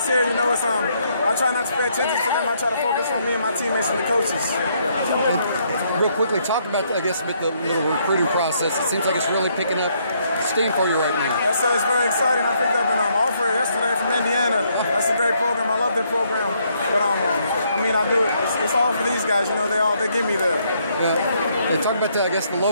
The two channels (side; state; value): both; inverted; correlation -0.71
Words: here, it's I try not to pay attention to them. I try to focus on me and my teammates and the coaches. And real quickly, talk about, I guess, with the little recruiting process. It seems like it's really picking up steam for you right now. Yes, sir. It's very exciting. I picked up an offer yesterday from Indiana. That's a great program. I love their program. But I mean, I do it. It's all for these guys. They get me there. Yeah. Talk about the